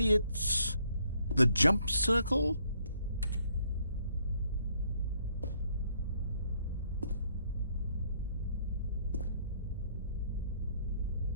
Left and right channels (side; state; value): both; inverted; correlation -0.68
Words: It's the jump circle.